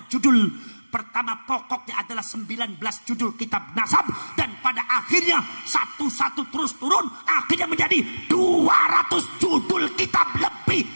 judul. Pertama pokoknya adalah 19 judul kitab nasab, dan pada akhirnya satu-satu terus turun, akhirnya menjadi 200 judul kitab lebih.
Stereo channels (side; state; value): both; inverted; correlation -1.00